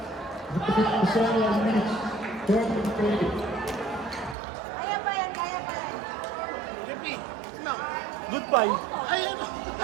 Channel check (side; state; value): left; drops out; at 4.4 s